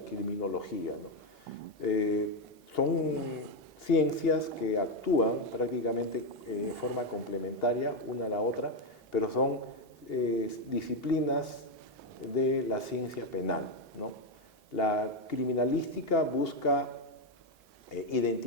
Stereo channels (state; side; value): normal; both; correlation 0.06